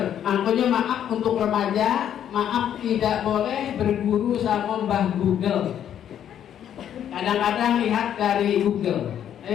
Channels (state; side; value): quieter; right; 9.9 dB